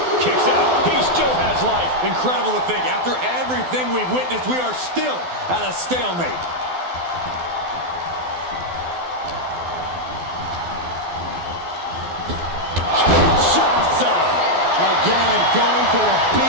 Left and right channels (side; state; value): left; late; 12 ms